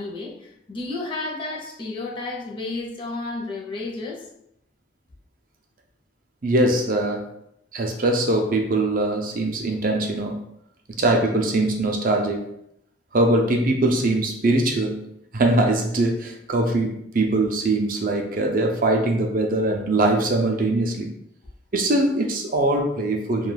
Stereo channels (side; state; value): both; normal; correlation 0.40